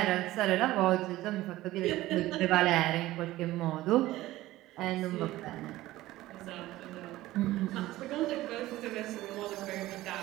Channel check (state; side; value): quieter; left; 16.6 dB